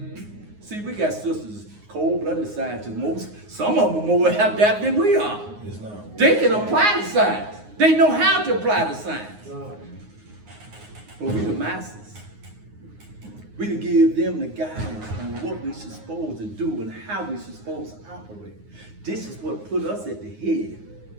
See, we got sisters, cold-blooded scientists. Some of them are more adept than we are. They can apply the science. They know how to apply the science. But we the masters. We to give them the guidance on what we supposed to do and how we supposed to operate. This is what put us at the head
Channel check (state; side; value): late; left; 9.6 ms